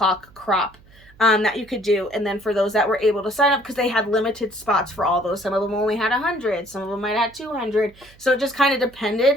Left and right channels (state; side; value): noise; right; hum, 26 dB below the sound